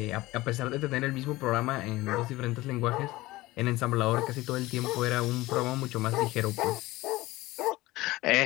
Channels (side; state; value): right; quieter; 19.0 dB